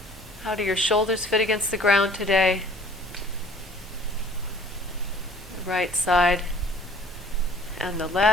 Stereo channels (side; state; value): both; normal; correlation 0.52